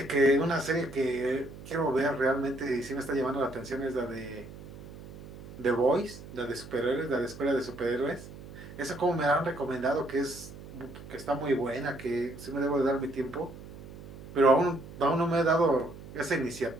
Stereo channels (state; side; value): noise; right; hum, 15 dB below the sound